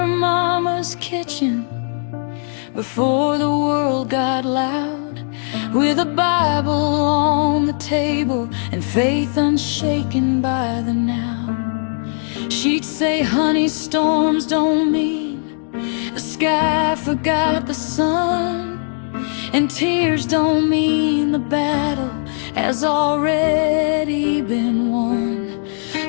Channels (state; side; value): silent; right; 66 dB below the other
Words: Mama's kitchen before the world got loud, with a Bible on the table and faith unshaken by the now. She'd say, honey, storms don't mean the sky forgot the sun, and tears don't mean the battle has already been won.